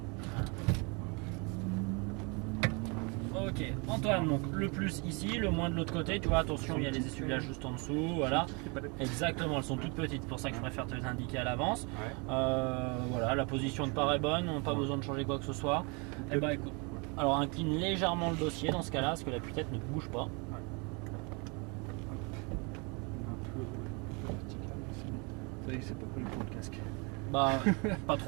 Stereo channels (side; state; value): left; quieter; 31.3 dB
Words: Ok, Antoine, donc le plus ici, le moins de l'autre côté, tu vois, attention, il y a les essuie-glaces juste en dessous, voilà. Exactement, elles sont toutes petites, c'est pour ça que je préfère te les indiquer à l'avance. Ouais. Voilà, la position de part est bonne, on n'a pas besoin de changer quoi que ce soit. Et bah écoute, alors incline légèrement le dossier dans ce cas-là, parce que la tête ne bouge pas. C'est pas collé pour le casque. Bah, pas